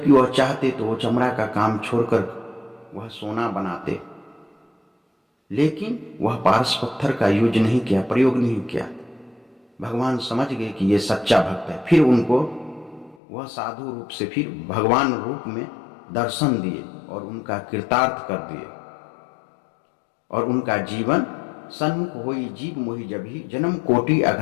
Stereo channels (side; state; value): right; drops out; at 13.2 s